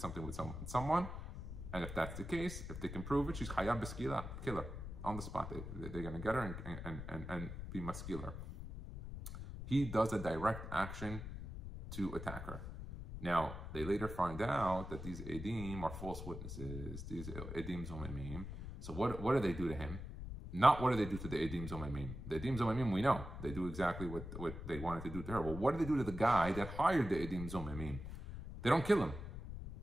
with someone. And if that's the case, if they can prove it, she's chayab b'skila, killer, on the spot. They're going to get her and be maskiller. He does a direct action to attack her. Now, they later find out that these edim are false witnesses, these edim zomemim. So what do they do to him? Not what do they do to the edim zomemim. The edim zomemim, we know. They do exactly what they wanted to do to her. Well, what do they do to the guy that hired the edim zomemim? They don't kill him.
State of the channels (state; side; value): noise; left; rumble, 8 dB below the sound